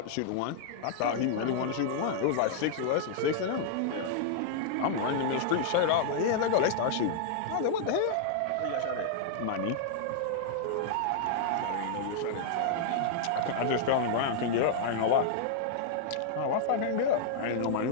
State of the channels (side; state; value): both; different; correlation -0.01